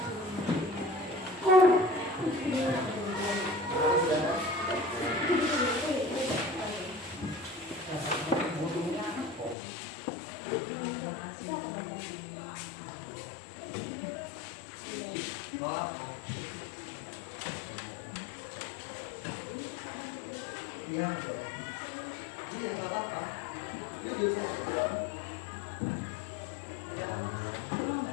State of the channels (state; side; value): drops out; right; at 9.6 s